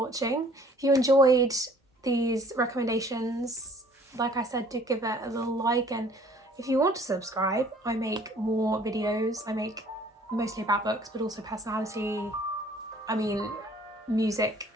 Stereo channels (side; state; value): both; normal; correlation 0.55